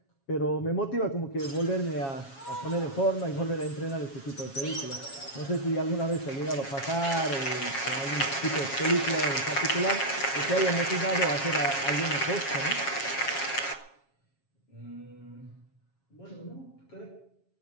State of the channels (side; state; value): right; late; 7.3 ms